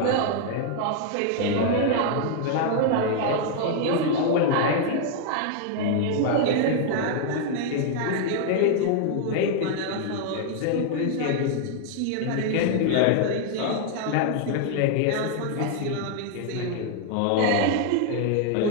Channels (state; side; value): different; both; correlation 0.00